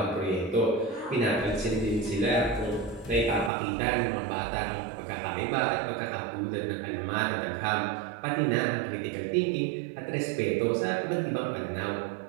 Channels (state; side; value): drops out; left; at 3.5 s